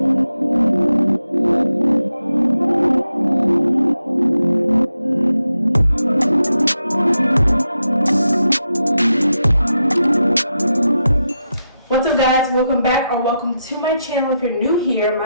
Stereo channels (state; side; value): inverted; both; correlation -0.86